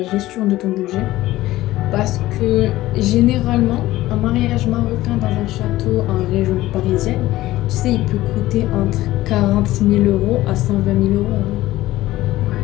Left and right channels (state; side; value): quieter; right; 16.3 dB